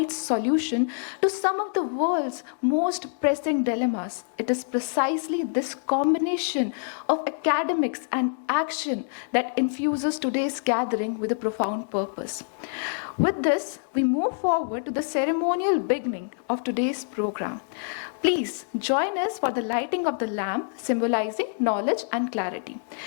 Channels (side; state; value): right; silent; digital silence